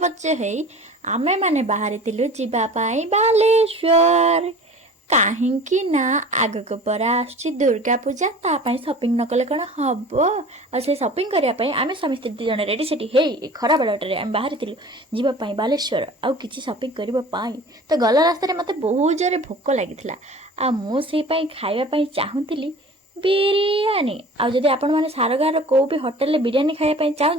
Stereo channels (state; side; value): normal; both; correlation 0.42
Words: पच्च हे आमे माने बाहरितिलु जिबा पाई बालेश्वर कहीं ना आगक परा आछि दुर्गा पूजा तापाई शॉपिंग न कले कण हबो आ से शॉपिंग करिया पई आमे स्वामी स्त्री जने रेडी सेठी हे खरा बेलटारे आमे बाहरितिलु जिबा पाई बालेश्वर आ किछि शॉपिंग करिबो पाई तो गला रास्ता रे मते बहुत जोरे भोक लागिथिला आ मु सेई पाई खाइबा पाई चाहुतिली बिरियानी आ जदि आपण माने सारगार को भी होटल ले बिरियानी खाइबा पाई